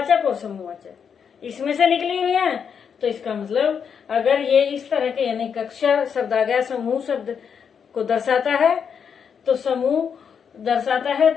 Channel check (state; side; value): quieter; right; 7.0 dB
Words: और समूहवाचक इसमें से निकली हुई है। तो इसका मतलब अगर ये इस तरह के यानी कक्षा शब्द आ गया, समूह शब्द को दर्शाता है, तो समूह दर्शाता है